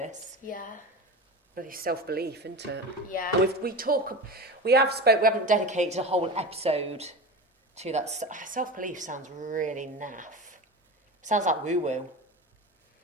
Yeah. Bloody self-belief, isn't it? Yeah. And we haven't dedicated a whole episode to that. Self-belief sounds really naff. Sounds like woo-woo.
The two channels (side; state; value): both; normal; correlation 0.28